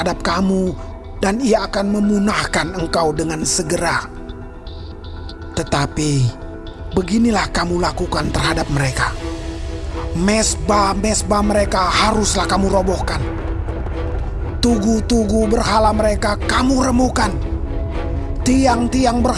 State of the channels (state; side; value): identical; both; correlation 1.00